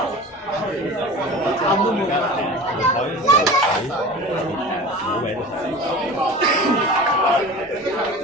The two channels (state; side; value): normal; both; correlation 0.36